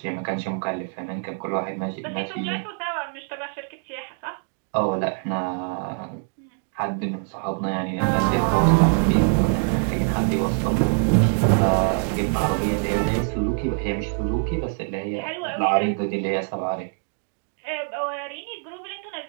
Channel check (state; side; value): silent; left; 56 dB below the other